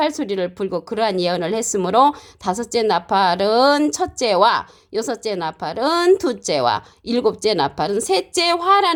소리를 불고 그러한 예언을 했으므로 다섯째 나팔은 첫째와 여섯째 나팔은 둘째와 일곱째 나팔은 셋째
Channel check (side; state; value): both; identical; correlation 1.00